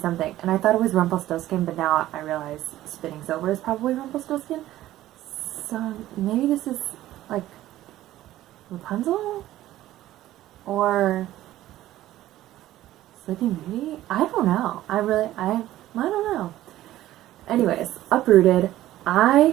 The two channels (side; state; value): left; quieter; 14.5 dB